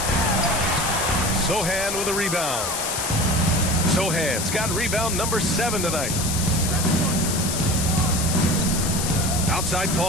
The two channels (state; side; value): noise; left; hiss, 2 dB below the sound